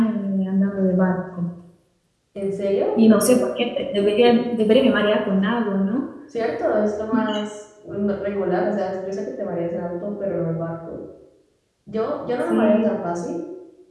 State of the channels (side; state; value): both; identical; correlation 1.00